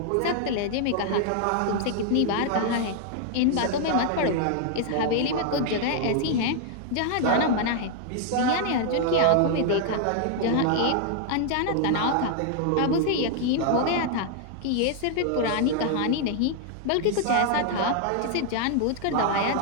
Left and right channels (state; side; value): different; both; correlation 0.00